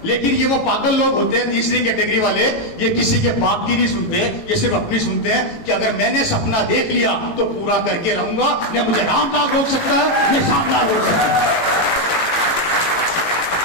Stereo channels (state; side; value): late; right; 18 ms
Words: लेकिन ये वो पागल लोग होते हैं तीसरी कैटेगरी वाले, ये किसी के बात की नहीं सुनते, ये सिर्फ अपनी सुनते हैं कि अगर मैंने सपना देख लिया तो पूरा करके रहूंगा, न मुझे रामलाल रोक सकता है न श्यामलाल रोक सकता है।